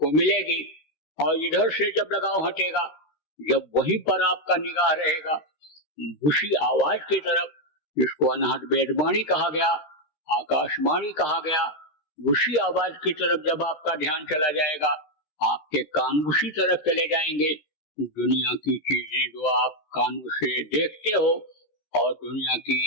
मिलेगी और इधर से जब लगाव हटेगा, जब वहीं पर आपका निगाह रहेगा उसी आवाज की तरफ, जिसको अनहद वेदवाणी कहा गया, आकाशवाणी कहा गया, उसी आवाज की तरफ जब आपका ध्यान चला जाएगा, आपके कान उसी तरफ चले जाएंगे। दुनिया की चीजें जो आप कानों से देखते हो और दुनिया की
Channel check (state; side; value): late; right; 13 ms